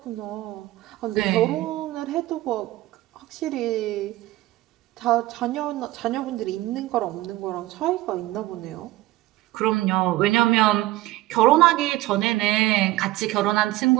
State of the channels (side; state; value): left; quieter; 17.2 dB